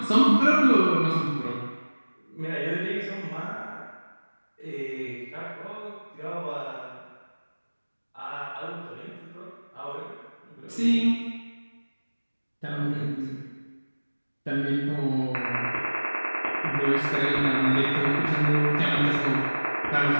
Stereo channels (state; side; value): inverted; both; correlation -1.00